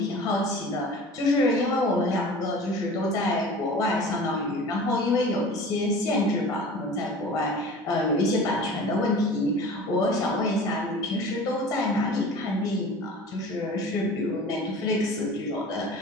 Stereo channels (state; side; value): normal; both; correlation 0.40